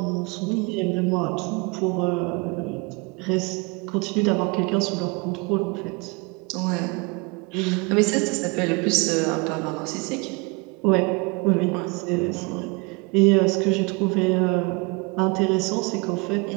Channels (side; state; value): left; quieter; 28.4 dB